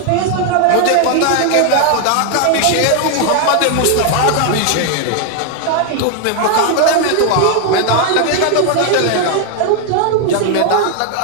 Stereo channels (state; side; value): different; both; correlation 0.00